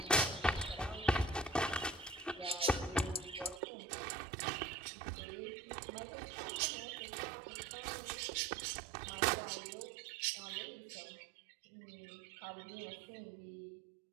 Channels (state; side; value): drops out; left; at 3.6 s